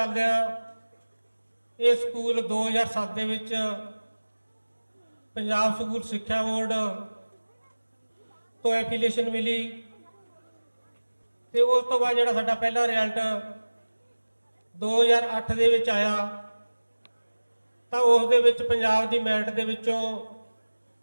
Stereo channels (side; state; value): both; inverted; correlation -1.00